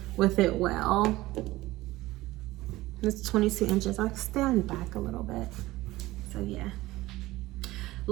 with it well. It's 22 inches. I'll stand back a little bit. So yeah,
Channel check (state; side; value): quieter; left; 18.0 dB